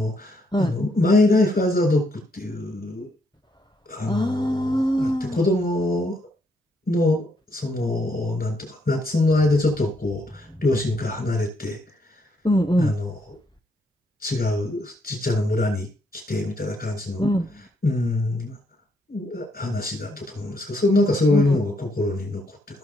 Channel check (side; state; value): both; normal; correlation 0.75